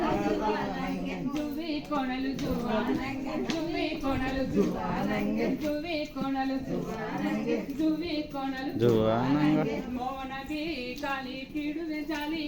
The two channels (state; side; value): identical; both; correlation 1.00